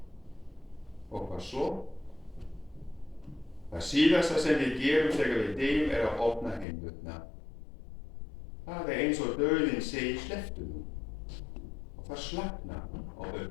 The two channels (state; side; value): drops out; right; at 6.7 s